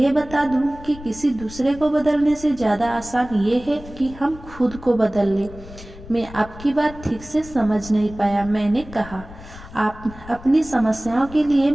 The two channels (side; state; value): left; noise; rumble, 17 dB below the sound